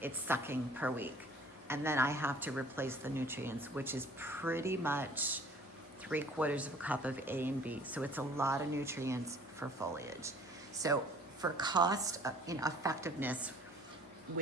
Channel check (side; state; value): both; normal; correlation 0.52